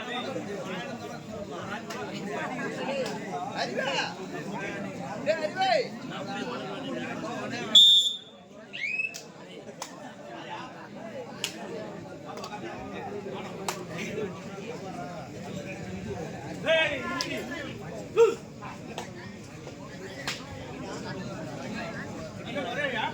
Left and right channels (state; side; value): identical; both; correlation 1.00